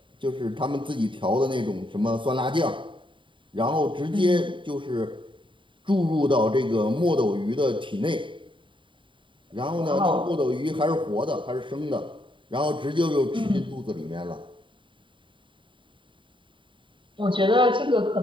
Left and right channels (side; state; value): left; late; 0.24 ms